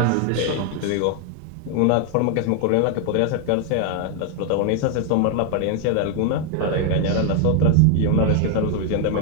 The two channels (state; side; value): different; both; correlation 0.00